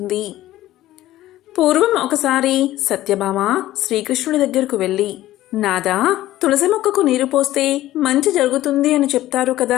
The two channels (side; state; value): right; quieter; 14.9 dB